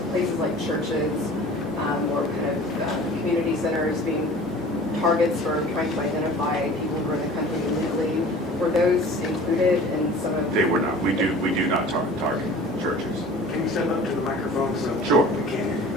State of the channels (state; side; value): normal; both; correlation 0.44